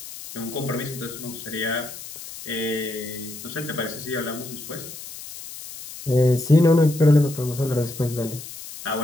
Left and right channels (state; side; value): noise; left; hiss, 13 dB below the sound